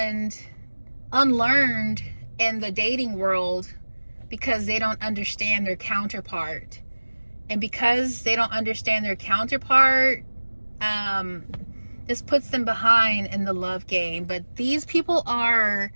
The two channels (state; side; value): inverted; both; correlation -1.00